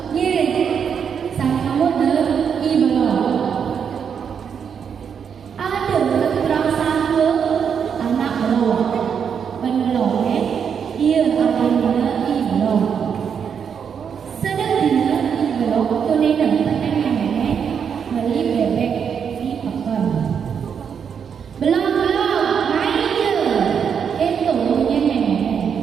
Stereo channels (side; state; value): left; quieter; 7.2 dB